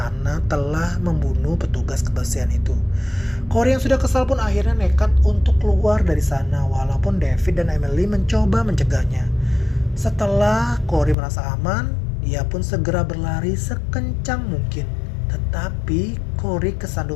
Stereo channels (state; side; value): drops out; right; at 11.2 s